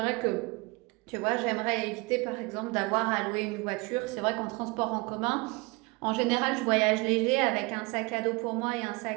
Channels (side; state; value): left; quieter; 26.3 dB